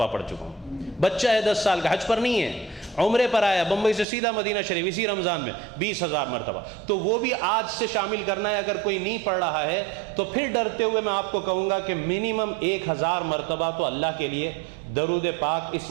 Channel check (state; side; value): drops out; left; at 4.0 s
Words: پڑھ چکا ہوں۔ بچہ ہے 10 سال کا، حج پر نہیں ہے، عمرے پر آیا بمبئی سے سیدھا مدینہ شریف اسی رمضان میں، 20,000 مرتبہ۔ تو وہ بھی آج سے شامل کرنا ہے، اگر کوئی نہیں پڑھ رہا ہے تو پھر ڈرتے ہوئے میں آپ کو کہوں گا کہ منیمم 1,000 مرتبہ تو اللہ کے لیے درود پاک اس